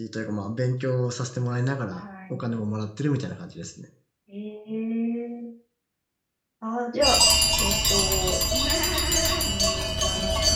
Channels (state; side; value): identical; both; correlation 1.00